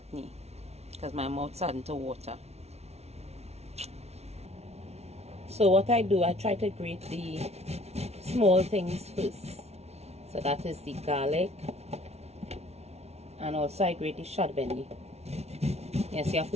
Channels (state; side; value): late; left; 0.31 ms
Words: because my mouth's starting to water. So what I do, I try to grate the small things first. So that is the garlic, and also I grate the chutney. Yes, you have